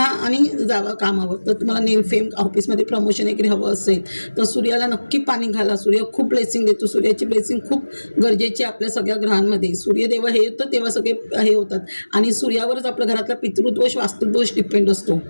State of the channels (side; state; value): both; inverted; correlation -1.00